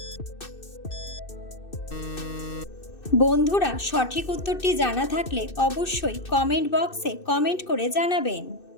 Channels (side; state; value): right; late; 2.6 ms